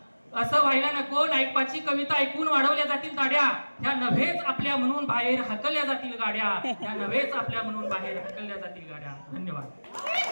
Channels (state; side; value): inverted; both; correlation -1.00